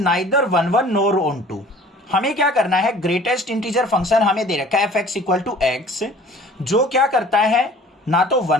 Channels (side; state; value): both; normal; correlation 0.49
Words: neither 1 nor onto. हमें क्या करना है, greatest integer function हमें दे रखा है f x equal to x, जो क्या करता है ना तो